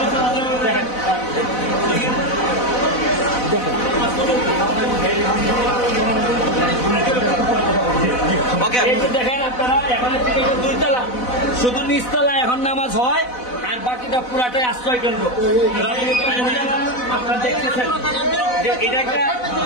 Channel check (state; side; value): late; right; 4.0 ms